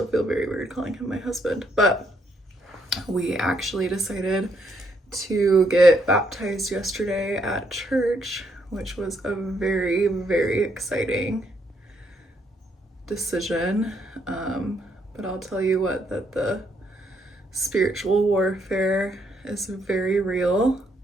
feel very weird calling him my husband. But we actually decided to get baptized yesterday at church, which was a very, very exciting decision. But I'll tell you what, that the spiritual warfare is very real.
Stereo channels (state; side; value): normal; both; correlation 0.73